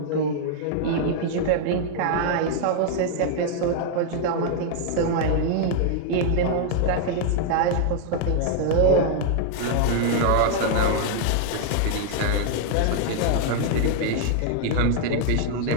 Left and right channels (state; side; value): different; both; correlation -0.01